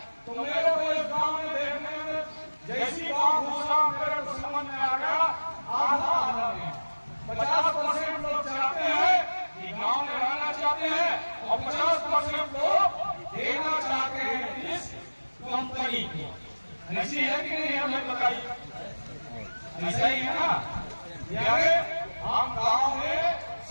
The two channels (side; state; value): both; inverted; correlation -1.00